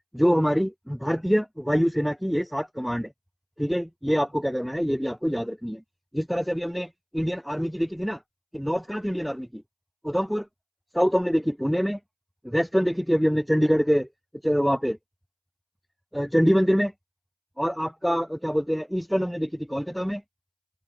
जो हमारी भारतीय वायुसेना की ये 7 कमांड है। ठीक है, ये आपको क्या करना है, ये भी आपको याद रखनी है। जिस तरह से अभी हमने इंडियन आर्मी की देखी थी ना, कि नॉर्थ कहाँ थी इंडियन आर्मी की? उधमपुर। साउथ हमने देखी पुणे में। वेस्टर्न देखी थी अभी हमने चंडीगढ़ के वहां पे चंडी मंदिर में। और आपका क्या बोलते हैं, ईस्टर्न हमने देखी थी कोलकाता में।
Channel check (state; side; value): identical; both; correlation 1.00